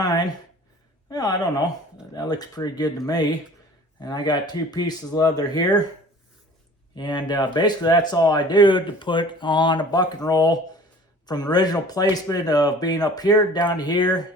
Well, I don't know. That looks pretty good to me. And I got 2 pieces of leather here. And basically that's all I do to put on a buck and roll from the original placement of being up here down to here.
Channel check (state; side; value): normal; both; correlation 0.47